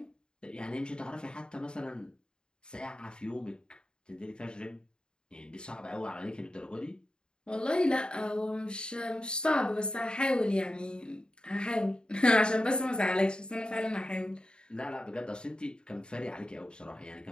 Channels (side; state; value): right; late; 0.050 ms